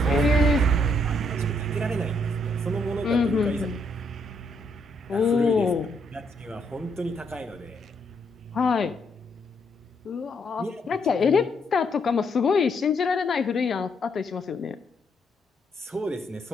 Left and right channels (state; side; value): normal; both; correlation 0.74